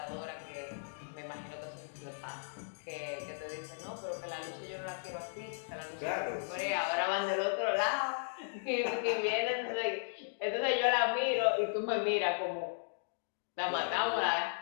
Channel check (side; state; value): right; silent; digital silence